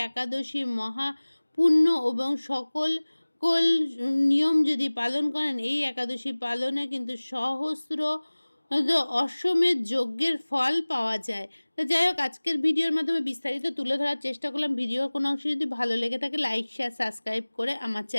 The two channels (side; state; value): both; inverted; correlation -1.00